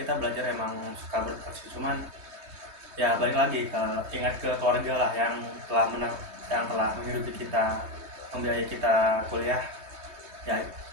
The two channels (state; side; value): late; left; 3.2 ms